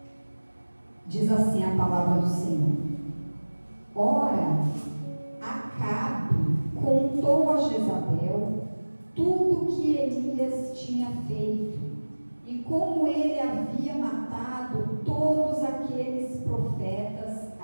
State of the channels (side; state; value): both; inverted; correlation -1.00